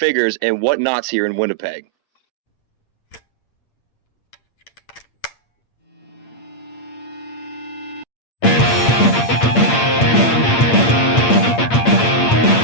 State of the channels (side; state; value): right; late; 8.6 ms